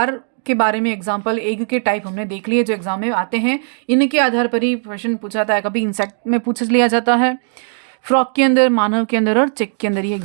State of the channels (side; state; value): left; silent; digital silence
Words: के बारे में एग्जाम्पल एग के टाइप हमने देख लिए जो एग्जाम में आते हैं। इनके आधार पर ही क्वेश्चन पूछा जाता है, कभी इंसेक्ट में पूछ लिया जाता है, फ्रॉग के अंदर, मानव के अंदर और चिक के अंदर ये